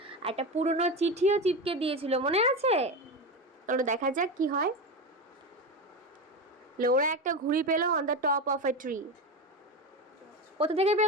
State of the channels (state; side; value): normal; both; correlation 0.20